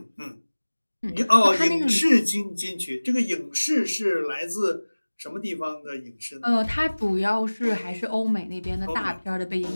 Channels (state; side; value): inverted; both; correlation -1.00